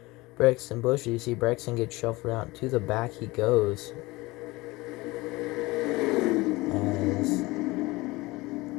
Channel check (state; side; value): quieter; right; 21.4 dB